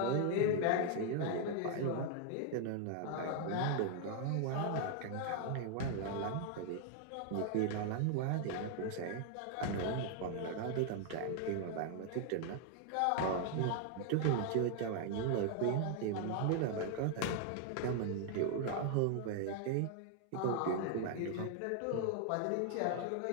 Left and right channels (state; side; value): different; both; correlation 0.00